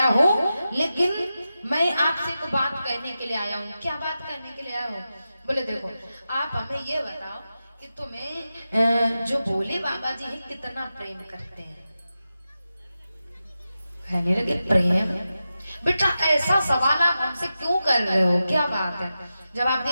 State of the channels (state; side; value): inverted; both; correlation -0.92